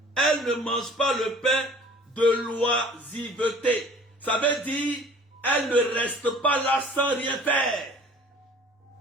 Elle ne mange pas le pain de l'oisiveté. Ça veut dire, elle ne reste pas là sans rien faire.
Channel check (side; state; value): both; normal; correlation 0.49